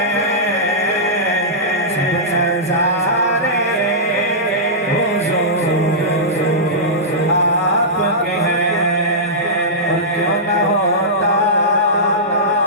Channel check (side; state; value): both; normal; correlation -0.15